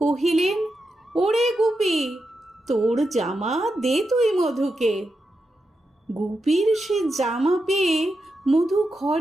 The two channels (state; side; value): normal; both; correlation 0.87